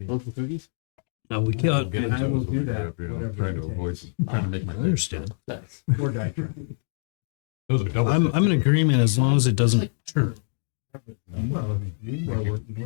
Want some cookies? No, we can't. And I will do that, You know, whatever trying it to avoid, takes. trying to make I my understand. Nice. Or die trying. Those are double. I'm in agreement as long as it It's doesn't like turn. peppermint stuff. Well, if you are working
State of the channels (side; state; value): right; silent; digital silence